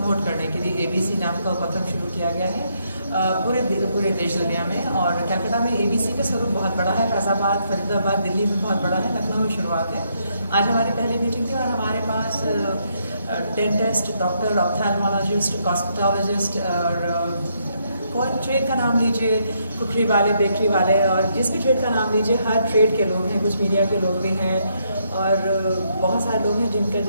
करने के लिए एबीसी नाम का उपक्रम शुरू किया गया है पूरे देश दुनिया में। और कलकत्ता में एबीसी का स्वरूप बहुत बड़ा है, फैजाबाद, फरीदाबाद, दिल्ली में बहुत बड़ा है, लखनऊ में शुरुआत है। आज हमारी पहली मीटिंग थी और हमारे पास डेंटिस्ट, डॉक्टर, ऑप्थेल्मोलॉजिस्ट, कॉस्मेटोलॉजिस्ट और कोई ट्रेड का नाम लीजिए, कुकरी वाले, बेकरी वाले, और जिस भी ट्रेड का नाम लीजिए, हर ट्रेड के लोग हैं। कुछ मीडिया के लोग भी हैं और बहुत सारे लोग हैं जिनका,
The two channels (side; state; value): both; inverted; correlation -0.75